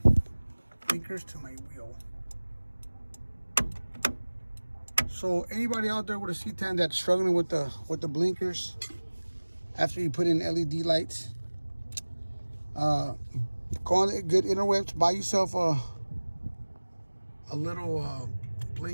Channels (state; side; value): inverted; both; correlation -1.00